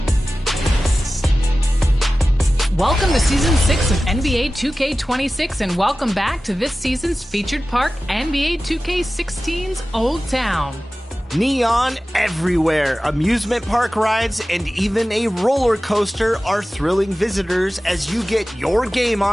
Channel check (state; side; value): normal; both; correlation 0.96